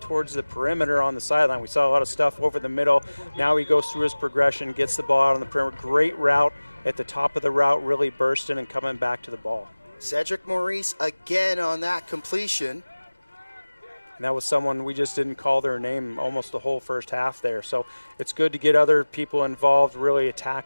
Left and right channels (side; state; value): both; inverted; correlation -1.00